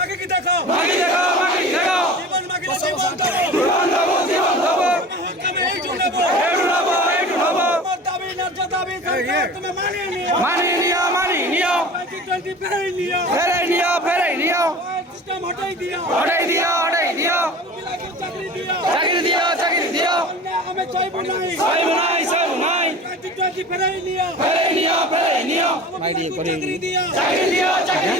কি দেখো মাগে দেখো মাগে দেখো জীবন মাগিলে জীবন দেব জীবন দেব জীবন দেব হকামে এই জুনেব এই জুনেব এই জুনেব আমার দাবি ন্যায্য দাবি সরকার তুমি মানিয়ে নিও 2020 ফেরাই নিও সিস্টেম হটাই দিও চাকরি দিও আমি চাইবো নাই 2020 ফেরাই নিও চাকরি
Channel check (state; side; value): normal; both; correlation 0.38